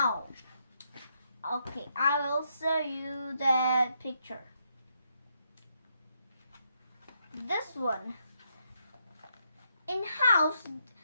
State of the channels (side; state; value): both; inverted; correlation -0.77